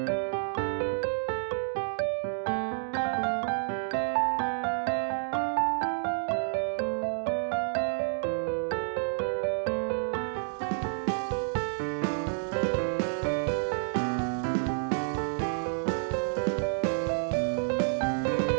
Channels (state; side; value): silent; left; digital silence